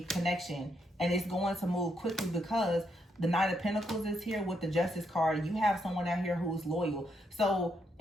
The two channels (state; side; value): normal; both; correlation 0.78